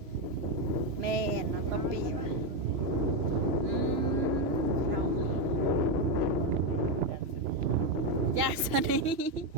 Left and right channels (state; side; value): late; left; 3.0 ms